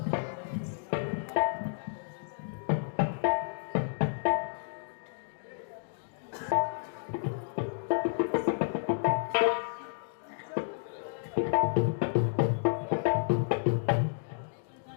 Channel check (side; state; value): right; silent; digital silence